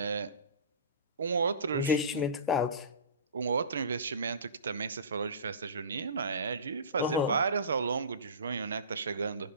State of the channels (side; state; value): both; inverted; correlation -0.35